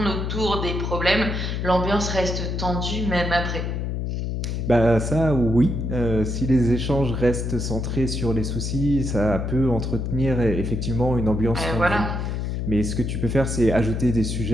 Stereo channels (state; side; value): noise; left; hum, 2 dB below the sound